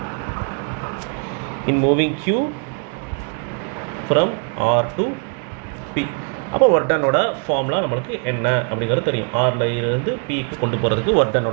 in moving Q from R to P. அப்போ ஒர்க் டனோட ஃபார்முலா நம்மளுக்கு என்ன அப்படிங்கிறது தெரியும். ஆரில் இருந்து பிக்கு கொண்டு போகிறதுக்கு ஒர்க்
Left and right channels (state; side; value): quieter; left; 38.9 dB